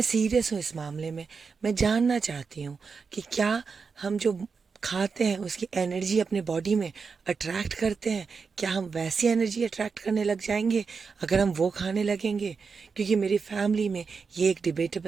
सीरियस हूँ इस मामले में। मैं जानना चाहती हूँ कि क्या हम जो खाते हैं उसकी एनर्जी अपने बॉडी में अट्रैक्ट करते हैं? क्या हम वैसी एनर्जी अट्रैक्ट करने लग जाएंगे अगर हम वो खाने लगेंगे? क्योंकि मेरी फैमिली में ये एक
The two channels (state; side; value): quieter; left; 5.2 dB